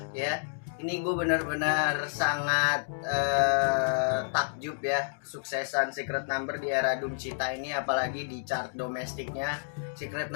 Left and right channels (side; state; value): right; silent; digital silence